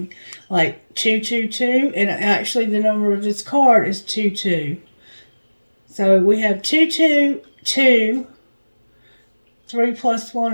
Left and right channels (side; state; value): both; inverted; correlation -1.00